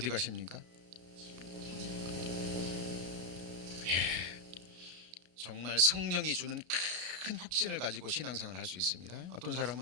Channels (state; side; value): late; left; 33 ms